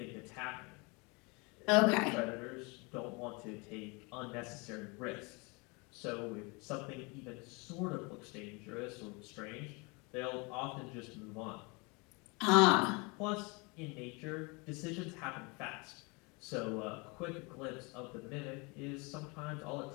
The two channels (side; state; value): right; quieter; 29.2 dB